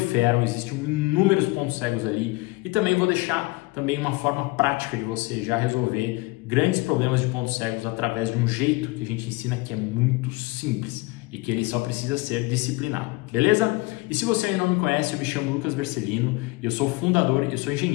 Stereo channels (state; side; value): quieter; right; 22.7 dB